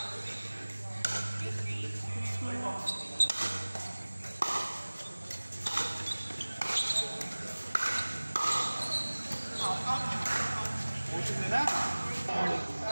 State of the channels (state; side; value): inverted; both; correlation -1.00